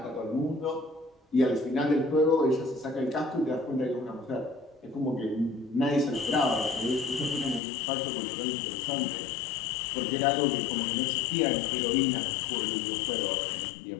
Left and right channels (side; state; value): right; drops out; at 7.6 s